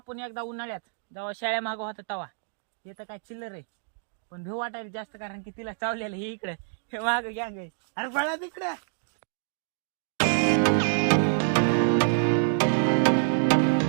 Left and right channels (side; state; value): left; silent; digital silence